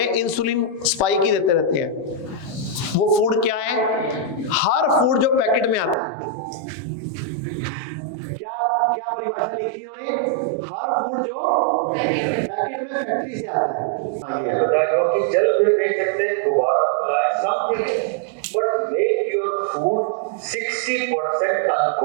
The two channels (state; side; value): drops out; left; at 6.0 s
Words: इंसुलिन स्पाइक ही देते रहते हैं। वो फूड क्या है? हर फूड जो पैकेट में आता है, क्या क्या परिभाषा लिखी इन्होंने? हर फूड जो पैकेट में फैक्ट्री से आता है। ये है। हम